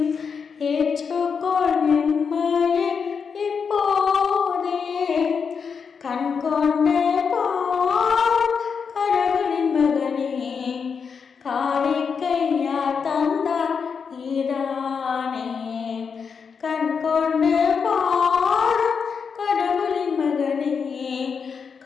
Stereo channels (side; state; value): right; quieter; 6.0 dB